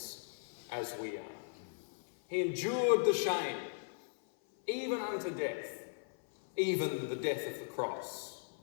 as we are. He endured the shame, even unto death, even the death of the cross.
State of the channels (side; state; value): right; silent; 53 dB below the other